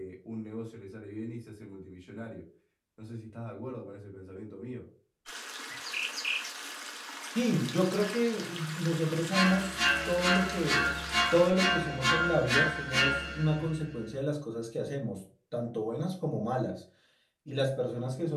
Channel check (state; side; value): identical; both; correlation 1.00